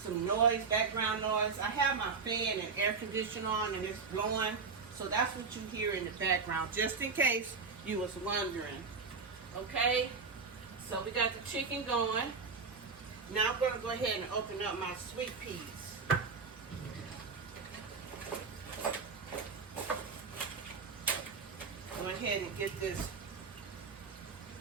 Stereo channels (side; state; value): left; quieter; 4.9 dB